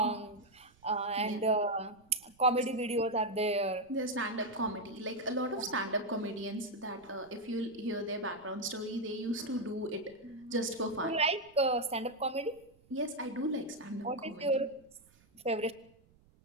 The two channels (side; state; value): right; noise; rumble, 30 dB below the sound